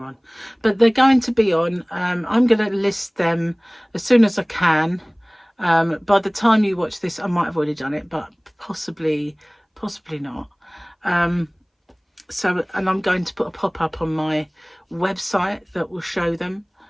on. But they're going to be on. I'm going to list them as soon as I can. By the time you watch this, I might have already done it, but possibly not. So, and I'm going to put a pop-up on my website that will show them,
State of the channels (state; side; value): identical; both; correlation 1.00